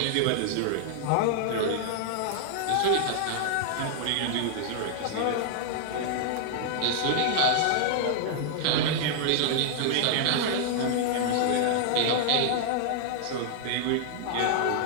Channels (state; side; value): different; both; correlation -0.01